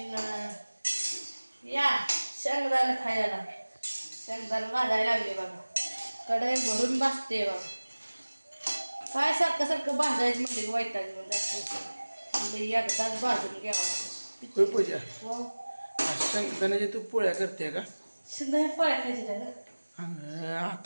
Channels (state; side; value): inverted; both; correlation -1.00